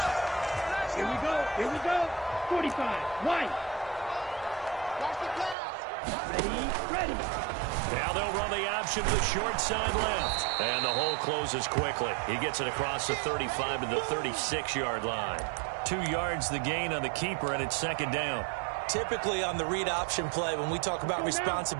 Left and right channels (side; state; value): left; drops out; at 5.6 s